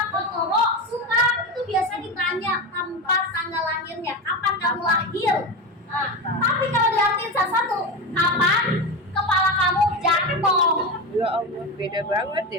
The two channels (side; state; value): both; normal; correlation 0.19